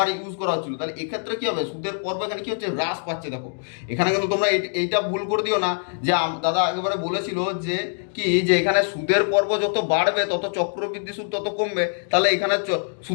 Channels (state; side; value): silent; right; digital silence